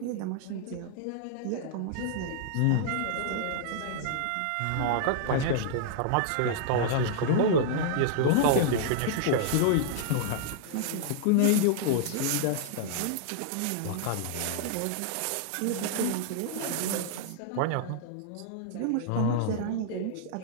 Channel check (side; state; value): both; different; correlation -0.01